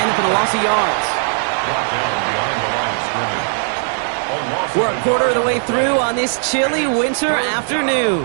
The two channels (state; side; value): silent; left; 67 dB below the other